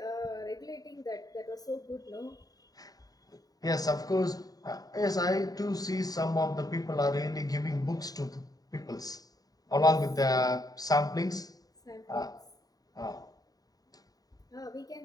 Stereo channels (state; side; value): late; right; 0.18 ms